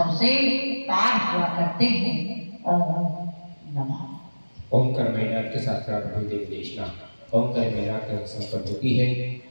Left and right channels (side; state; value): both; inverted; correlation -1.00